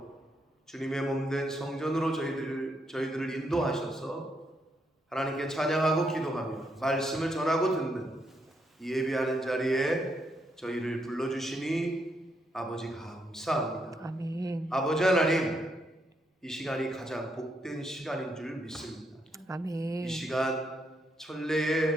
주님의 몸된 성전으로 저희들을 인도하셔서 하나님께 찬양하고 기도하며 말씀을 전하고 듣는 이 예배하는 자리에 저희를 불러주시니 아버지 감사합니다. 아멘. 아버지 하나님, 이 시간이 가장 복된 시간인 줄 믿습니다. 아멘. 이 시간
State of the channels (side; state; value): both; normal; correlation 0.77